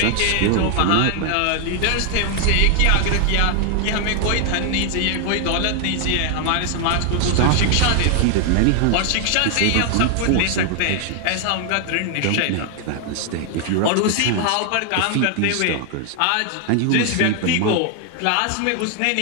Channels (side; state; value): both; different; correlation 0.00